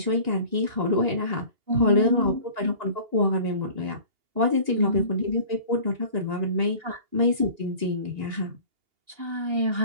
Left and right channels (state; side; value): late; left; 2.8 ms